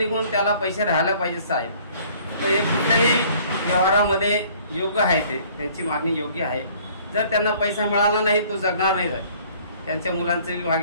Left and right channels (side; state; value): both; inverted; correlation -0.55